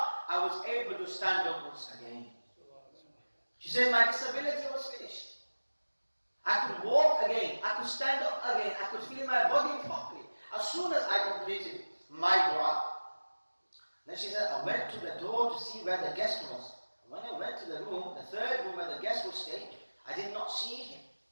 I was able to stand up once again. She said my disability was finished. I could walk again, I could stand up again, I could feel my body properly as soon as I completed my dua. Then she said, I went to the door to see where the guest was. When I went to the room, the third room where the guest would stay, I did not see him.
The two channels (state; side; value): inverted; both; correlation -1.00